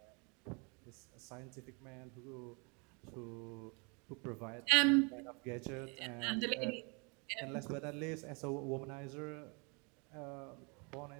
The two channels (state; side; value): quieter; left; 32.6 dB